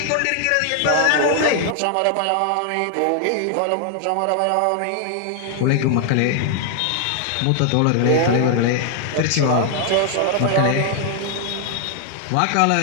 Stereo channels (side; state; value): both; different; correlation 0.00